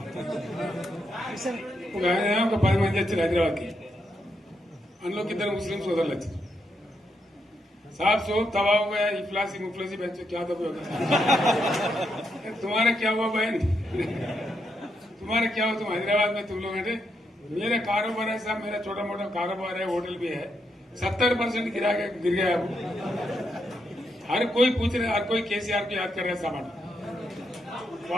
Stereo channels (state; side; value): normal; both; correlation 0.81